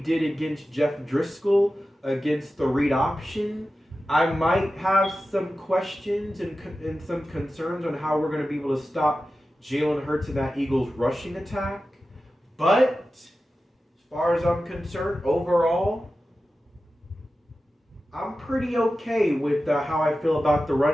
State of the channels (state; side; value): normal; both; correlation 0.93